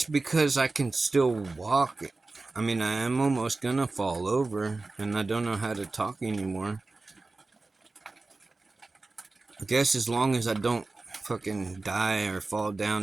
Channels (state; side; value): quieter; left; 3.5 dB